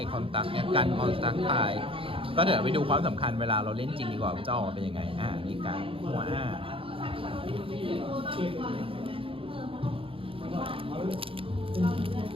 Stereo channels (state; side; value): late; left; 0.26 ms